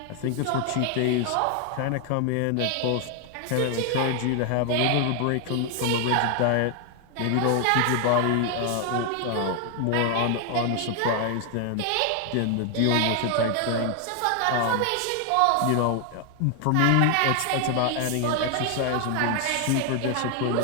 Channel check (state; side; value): different; both; correlation 0.00